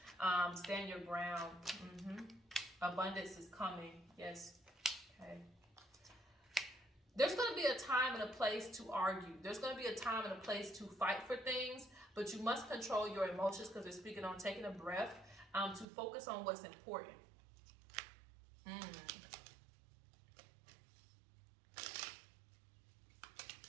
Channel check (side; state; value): left; drops out; at 15.9 s